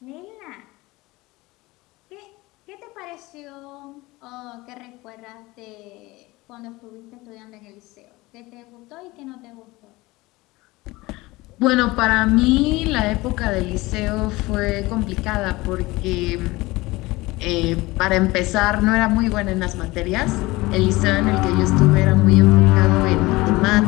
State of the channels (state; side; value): quieter; right; 20.9 dB